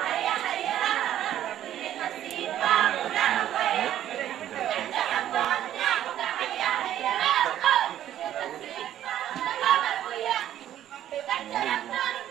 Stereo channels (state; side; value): quieter; left; 11.7 dB